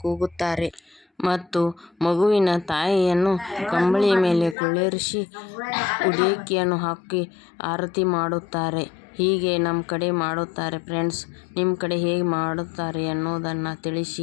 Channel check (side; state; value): right; drops out; at 4.5 s